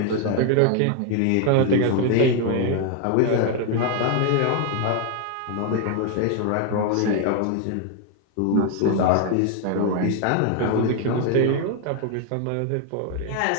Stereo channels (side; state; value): both; different; correlation 0.00